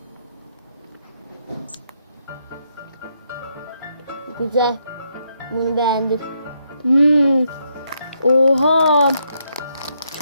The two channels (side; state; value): both; inverted; correlation -0.77